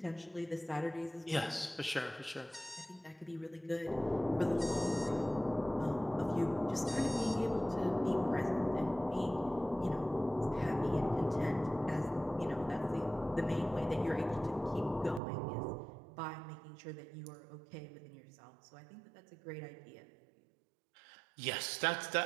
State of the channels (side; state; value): left; drops out; at 15.2 s